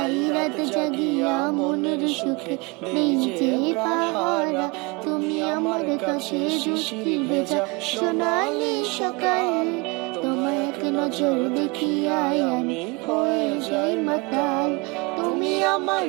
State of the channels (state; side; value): quieter; left; 27.9 dB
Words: রাত জাগিয়া মনের সুখে দেই যে পাহারা। তুমি আমার কাছে শিশির ভেজা সোনালি সকাল, তোমার এক নজর দেখিয়াই আমি হয়ে যাই মাতাল। তুমি আমার